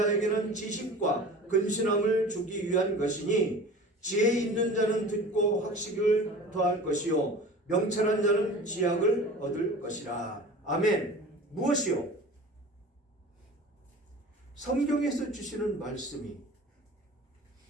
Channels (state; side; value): normal; both; correlation 0.39